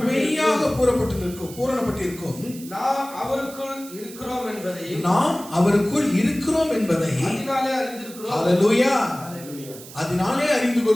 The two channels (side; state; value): right; noise; hiss, 16 dB below the sound